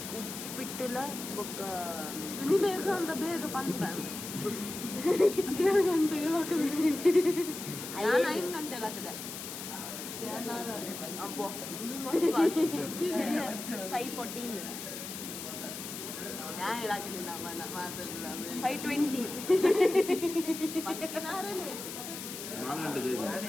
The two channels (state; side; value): noise; left; hiss, 8 dB below the sound